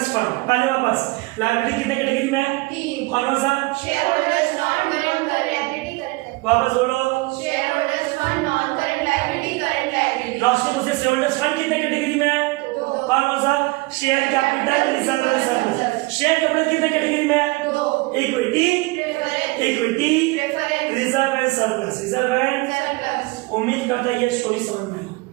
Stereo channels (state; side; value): quieter; left; 24.1 dB